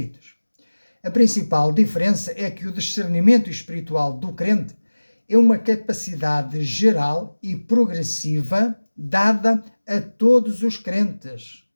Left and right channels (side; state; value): both; inverted; correlation -1.00